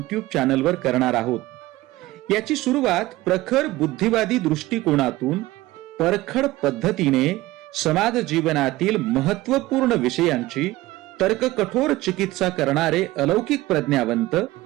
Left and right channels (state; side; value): quieter; left; 18.1 dB